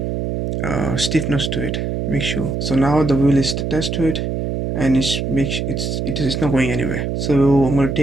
stiffness to it. Make sure. So now the wheel is attached to it and it's not going anywhere. So I'm going to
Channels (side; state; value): right; noise; hum, 2 dB below the sound